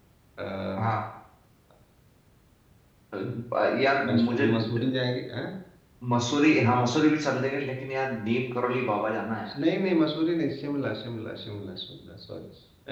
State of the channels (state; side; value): identical; both; correlation 1.00